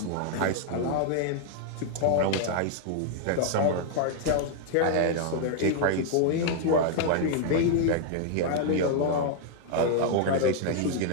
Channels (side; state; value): both; different; correlation 0.00